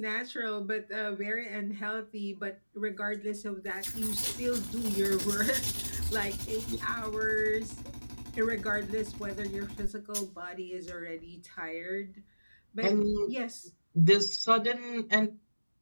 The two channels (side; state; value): both; inverted; correlation -1.00